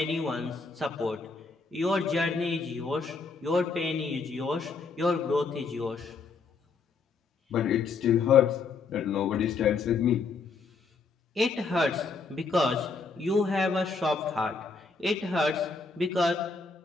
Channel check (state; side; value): quieter; right; 4.5 dB